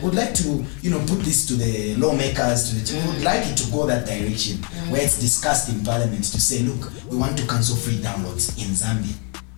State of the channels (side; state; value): right; quieter; 34.0 dB